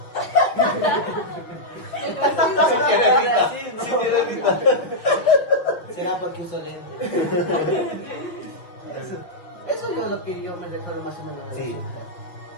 Será porque uso lentes. Eso es lo que yo me recuerdo más o menos. Sí.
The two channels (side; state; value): right; late; 5.8 ms